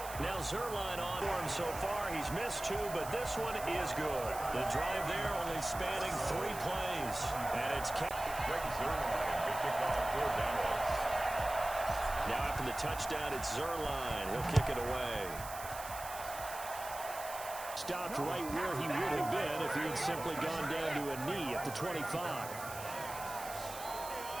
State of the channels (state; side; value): noise; right; hiss, 12 dB below the sound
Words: Now Zerline on for him so far. He's missed 2, but this one is good. The drive there only spanning 3 plays. And it's Zerline, good kickoff for Dallas. Now after the touchdown, it's Zerline. He'll kick it away. Stopped right where he would have been if he had simply gone down to a knee at the 25.